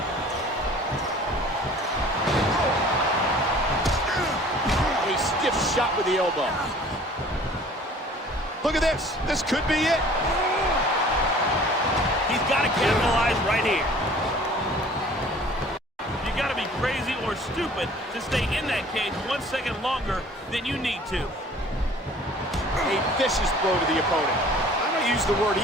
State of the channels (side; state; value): both; normal; correlation 0.50